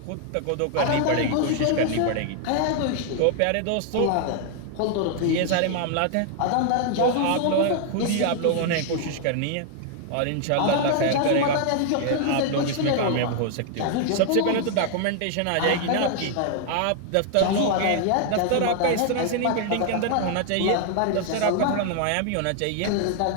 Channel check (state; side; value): different; both; correlation 0.00